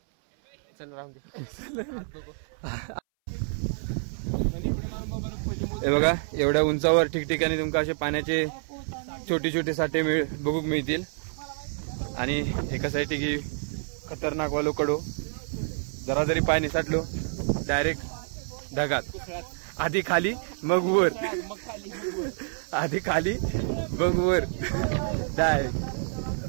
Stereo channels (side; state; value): left; silent; 59 dB below the other